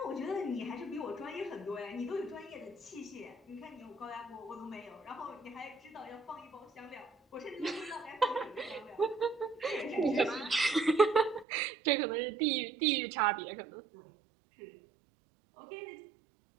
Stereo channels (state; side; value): drops out; left; at 11.5 s